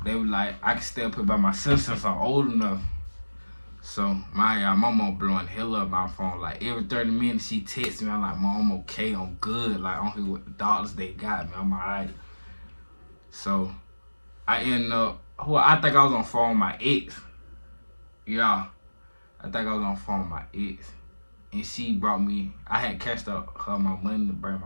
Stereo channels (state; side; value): inverted; both; correlation -1.00